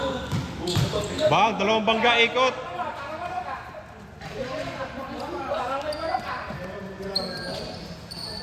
Bang, dalawang bangga ikot.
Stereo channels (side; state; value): both; identical; correlation 1.00